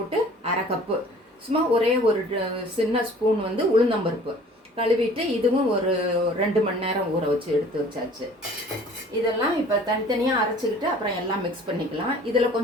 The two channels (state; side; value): normal; both; correlation 0.50